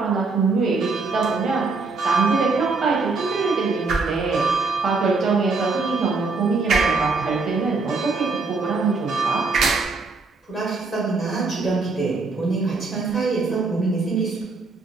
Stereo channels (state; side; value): quieter; left; 4.0 dB